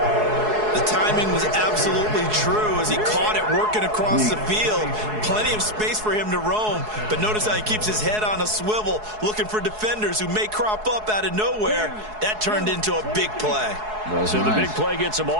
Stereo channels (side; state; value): left; late; 4.7 ms